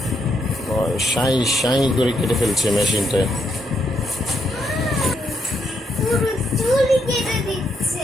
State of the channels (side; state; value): both; normal; correlation 0.77